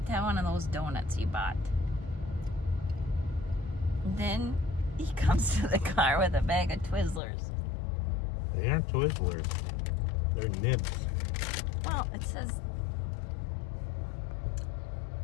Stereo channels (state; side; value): drops out; right; at 7.2 s